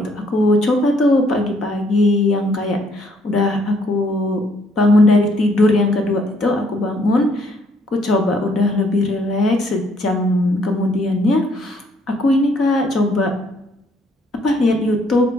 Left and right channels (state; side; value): normal; both; correlation 0.67